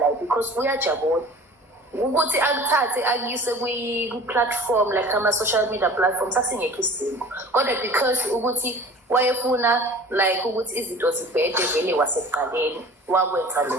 because uyajabula ukuthi akuthathe akuyise ku-platform like ama-social media platforms asingekho isidingo kodwa because ukuthi wayefuna like ukuthi izinto zibhede vele wasekuqaleni wakwenza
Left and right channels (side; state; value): both; normal; correlation 0.44